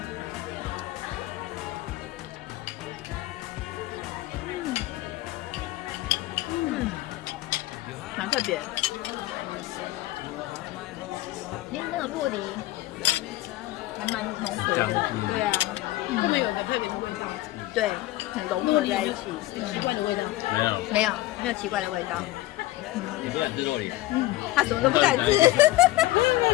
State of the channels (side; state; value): right; quieter; 17.2 dB